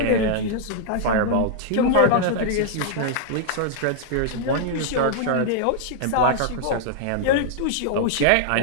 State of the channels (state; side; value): different; both; correlation -0.01